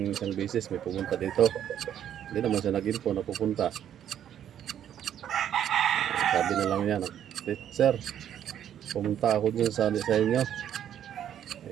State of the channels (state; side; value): quieter; left; 10.1 dB